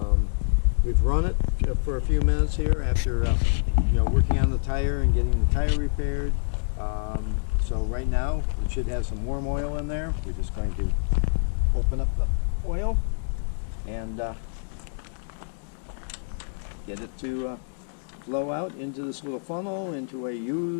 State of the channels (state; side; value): silent; right; digital silence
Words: We've run it for a few minutes here after working on the tire and getting the tire repaired. So right now it should have some warm oil in there. We're just going to open up the oil and get it to flow out into this little funnel into a